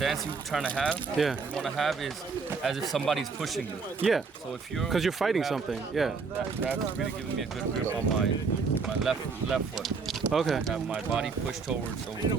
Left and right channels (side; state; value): left; quieter; 4.9 dB